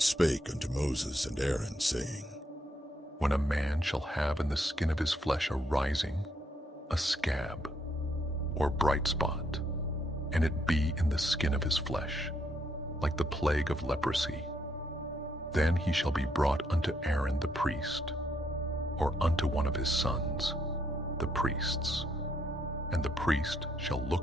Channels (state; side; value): normal; both; correlation 0.74